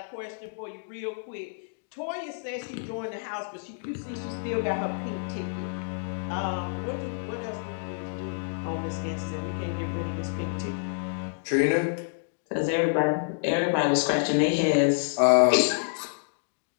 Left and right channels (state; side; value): silent; right; digital silence